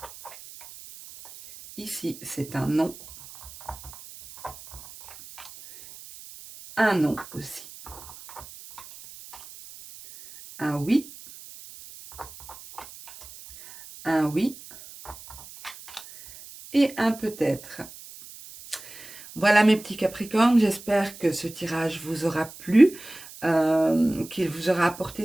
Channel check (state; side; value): noise; right; hiss, 17 dB below the sound